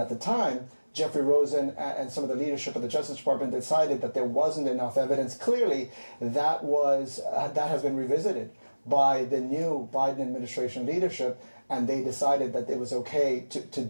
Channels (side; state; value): both; inverted; correlation -1.00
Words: at the time. Jeffrey Rosen and some of the leadership of the Justice Department decided that there wasn't enough evidence. Clearly, that has been revisited by the new Biden administration leadership, and they decided that it was okay to